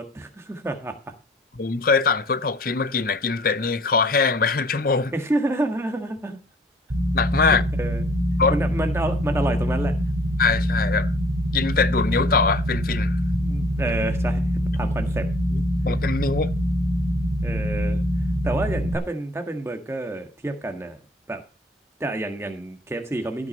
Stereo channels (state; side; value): normal; both; correlation 0.54